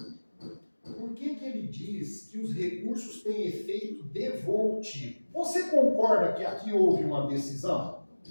por que ele diz que os recursos têm efeito devolutivo? Você concorda que aqui houve uma decisão?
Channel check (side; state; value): both; inverted; correlation -1.00